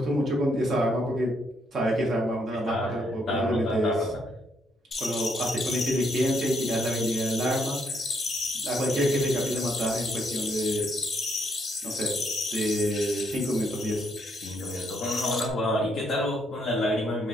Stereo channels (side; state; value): both; normal; correlation 0.73